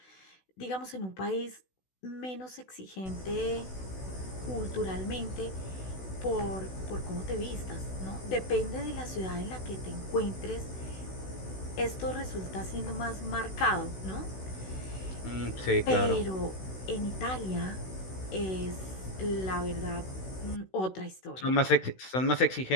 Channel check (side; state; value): right; late; 16 ms